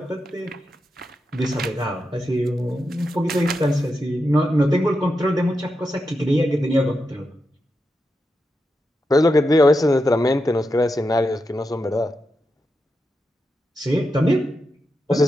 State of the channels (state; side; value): normal; both; correlation 0.87